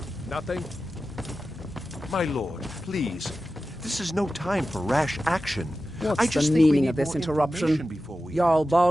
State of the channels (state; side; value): normal; both; correlation 0.93